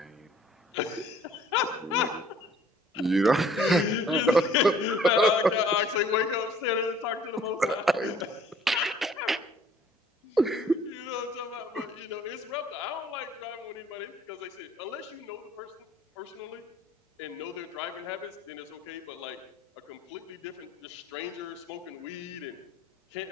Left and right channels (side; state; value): both; normal; correlation 0.56